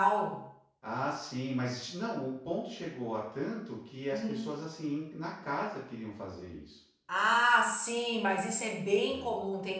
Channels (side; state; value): both; identical; correlation 1.00